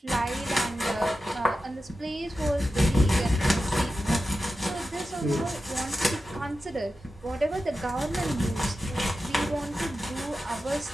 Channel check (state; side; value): normal; both; correlation 0.92